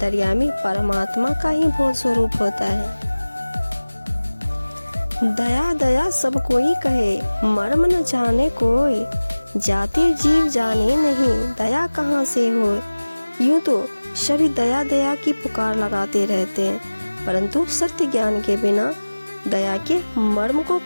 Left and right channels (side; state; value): both; inverted; correlation -1.00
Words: परमात्मा का ही बोध स्वरूप होता है। दया दया सब कोई कहे, मर्म न जाने कोई, जाति जीव जाने नहीं, दया कहाँ से हो। यूँ तो सभी दया दया की पुकार लगाते रहते हैं, परंतु सत्य ज्ञान के बिना दया के मर्म को